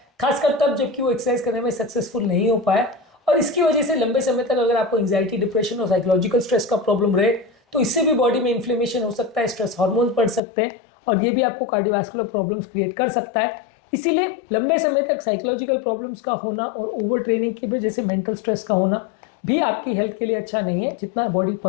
खासकर तब जबकि वो एक्सरसाइज करने में सक्सेसफुल नहीं हो पाए। और इसकी वजह से लंबे समय तक अगर आपको एंजाइटी, डिप्रेशन और साइकोलॉजिकल स्ट्रेस का प्रॉब्लम रहे तो इससे भी बॉडी में इन्फ्लेमेशन हो सकता है, स्ट्रेस हार्मोन बढ़ सकते हैं और ये भी आपको कार्डियोवास्कुलर प्रॉब्लम्स क्रिएट कर सकता है। इसीलिए लंबे समय तक साइकोलॉजिकल प्रॉब्लम्स का होना और ओवर ट्रेनिंग की वजह से मेंटल स्ट्रेस का होना भी आपकी हेल्थ के लिए अच्छा नहीं है। जितना बॉडी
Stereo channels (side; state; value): right; drops out; at 10.4 s